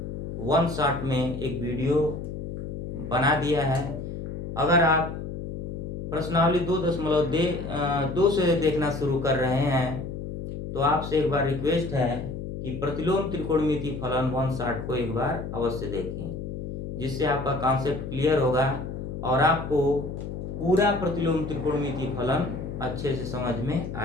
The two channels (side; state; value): left; noise; hum, 7 dB below the sound